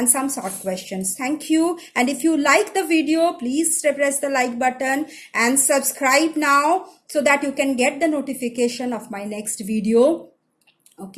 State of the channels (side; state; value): both; identical; correlation 1.00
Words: some short questions. Thank you. And if you like the video, please press the like button and subscribe now so that you can get the notification of my next video.